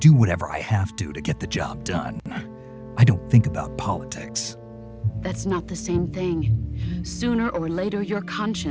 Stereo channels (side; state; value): both; identical; correlation 1.00